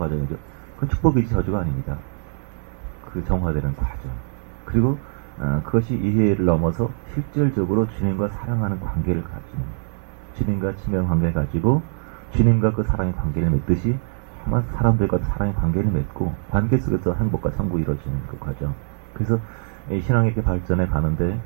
그건 축복이지 저주가 아닙니다. 그 정화되는 과정. 그리고 그것이 이해를 넘어서 실질적으로 주님과 사랑하는 관계를 가지고 주님과 친밀한 관계를 가지고 주님과 그 사랑의 관계를 맺듯이 사람들과 사랑의 관계를 맺고 관계 속에서 행복과 천국이 이루어지는 그 과정. 그래서 이 신앙이 이렇게 발전해 가는데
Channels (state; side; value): silent; left; 63 dB below the other